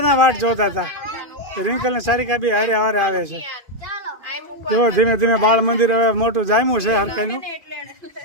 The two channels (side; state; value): left; late; 2.5 ms